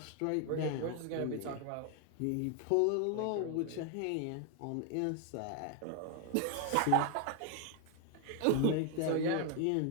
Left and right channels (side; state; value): both; different; correlation 0.01